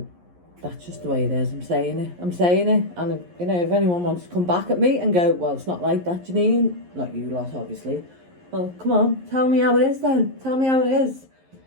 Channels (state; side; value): late; left; 11 ms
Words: that's just the way it is. I'm saying it. And, you know, if anyone wants to come back at me and go, well, it's not like that, Janine. Not you lot, obviously. Well, come on. Tell me how it is then. Tell me how it is.